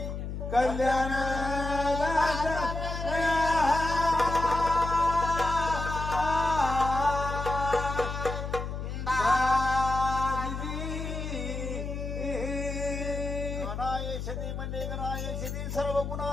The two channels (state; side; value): noise; left; hum, 5 dB below the sound